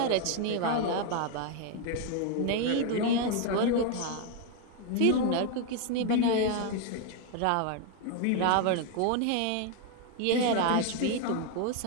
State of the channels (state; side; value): different; both; correlation 0.01